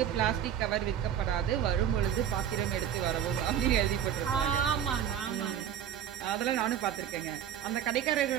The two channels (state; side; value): quieter; left; 9.6 dB